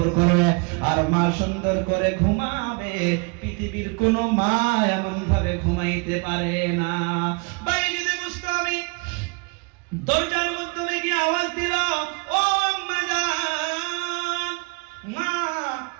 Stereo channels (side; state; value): left; quieter; 31.7 dB